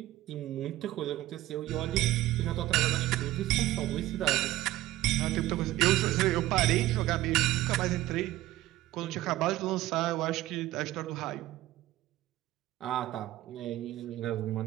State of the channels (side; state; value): left; quieter; 15.7 dB